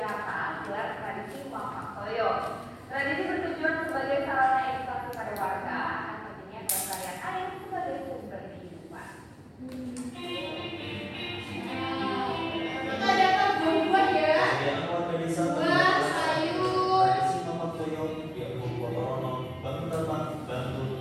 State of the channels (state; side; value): identical; both; correlation 1.00